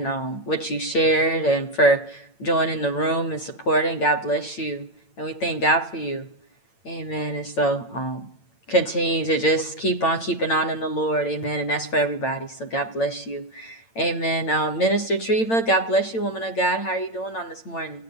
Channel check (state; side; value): late; right; 8.9 ms